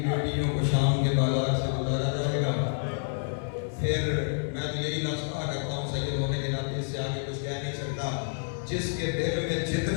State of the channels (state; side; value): silent; right; 59 dB below the other